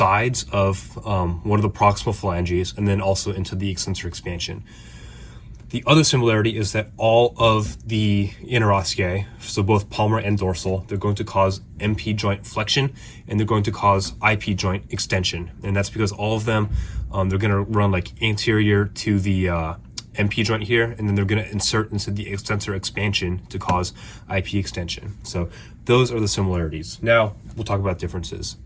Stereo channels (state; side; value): identical; both; correlation 1.00